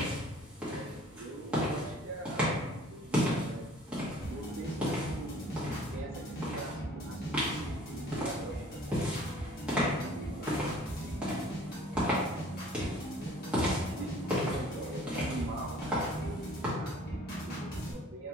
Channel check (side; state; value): both; normal; correlation 0.52